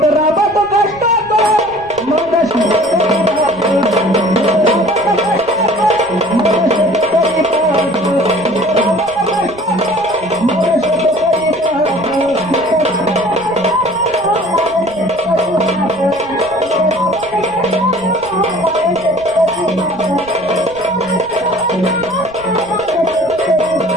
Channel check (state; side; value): noise; right; rumble, 22 dB below the sound